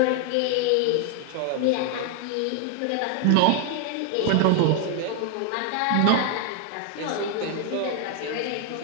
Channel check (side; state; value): both; different; correlation 0.00